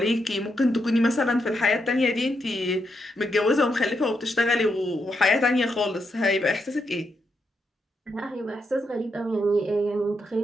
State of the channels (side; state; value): both; normal; correlation 0.82